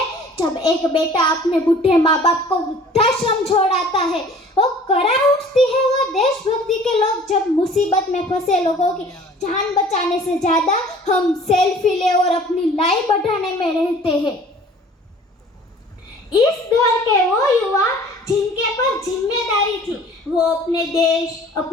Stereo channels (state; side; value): normal; both; correlation 0.49